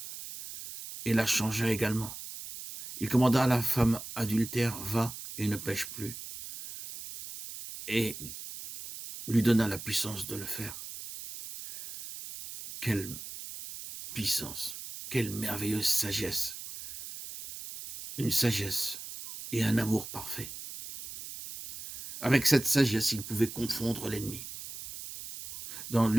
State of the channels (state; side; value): noise; right; hiss, 11 dB below the sound